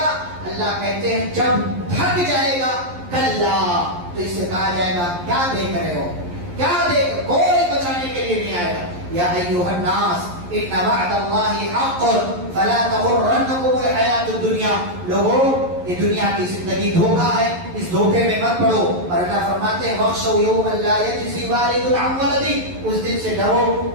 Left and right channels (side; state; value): left; late; 11 ms